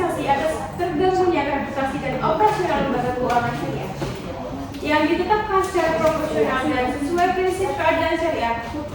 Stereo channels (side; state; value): both; identical; correlation 1.00